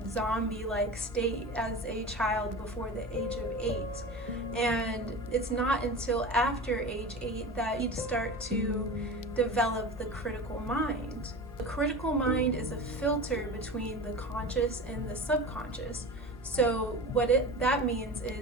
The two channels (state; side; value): normal; both; correlation 0.31